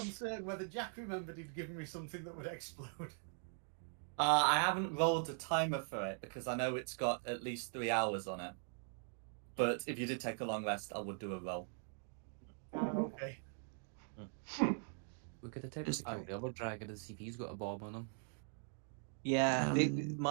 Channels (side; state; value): left; silent; 50 dB below the other